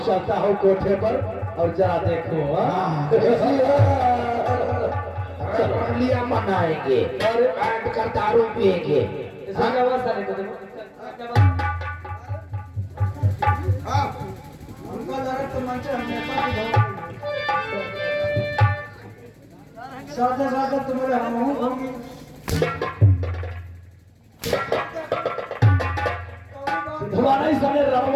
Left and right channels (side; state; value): both; identical; correlation 1.00